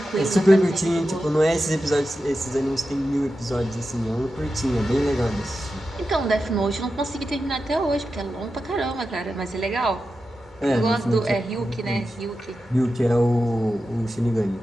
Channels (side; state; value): both; normal; correlation 0.91